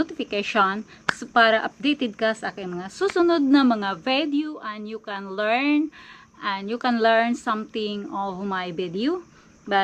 so para updated ka sa aking mga susunod na mga video, and you can learn something of my video.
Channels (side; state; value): both; identical; correlation 1.00